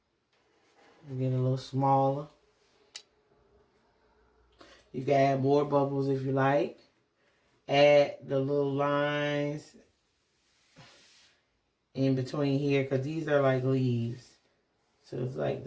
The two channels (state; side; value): identical; both; correlation 1.00